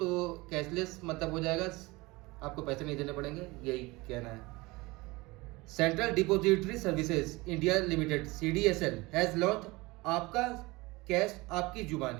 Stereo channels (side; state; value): left; quieter; 22.7 dB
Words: कैशलेस मतलब हो जाएगा, आपको पैसे नहीं देने पड़ेंगे, यही कहना है। Central depository services India limited CDSL has launch आपका कैश आपकी